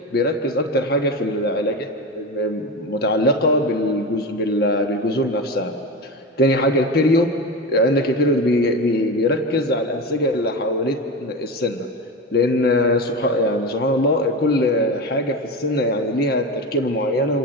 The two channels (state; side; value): normal; both; correlation 0.23